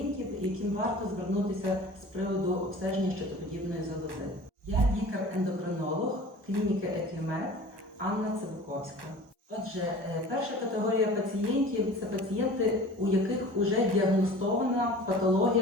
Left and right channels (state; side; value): late; left; 1.2 ms